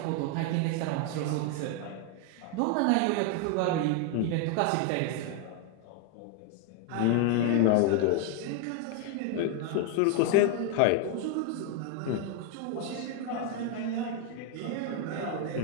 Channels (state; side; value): different; both; correlation 0.00